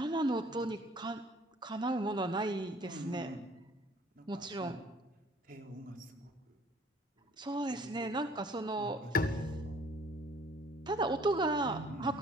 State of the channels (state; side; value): normal; both; correlation 0.56